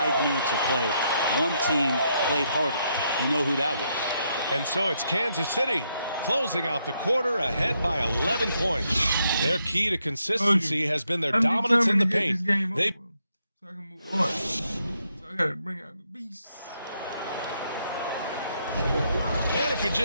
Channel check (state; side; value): inverted; both; correlation -0.77